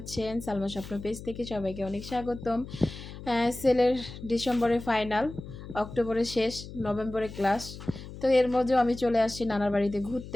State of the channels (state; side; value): noise; left; hum, 13 dB below the sound